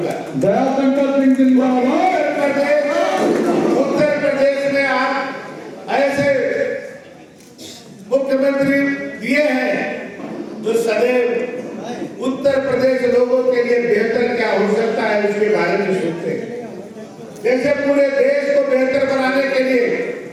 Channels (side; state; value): both; identical; correlation 1.00